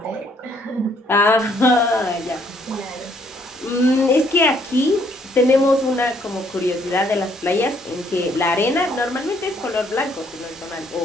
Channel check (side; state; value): both; normal; correlation 0.67